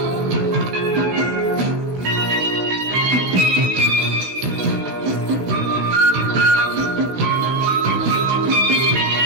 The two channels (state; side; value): late; left; 16 ms